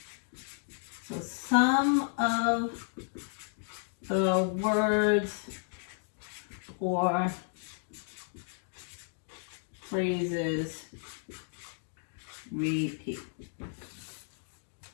So some of the words or phrases repeat.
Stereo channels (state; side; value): silent; right; digital silence